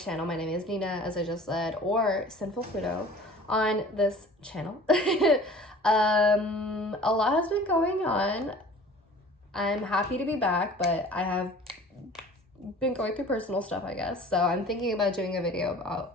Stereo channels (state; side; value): normal; both; correlation 0.46